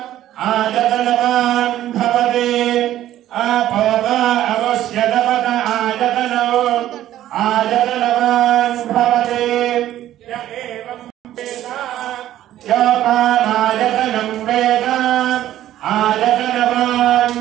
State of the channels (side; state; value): left; quieter; 12.9 dB